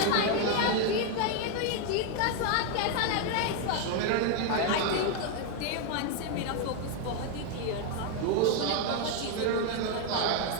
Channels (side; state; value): both; different; correlation 0.01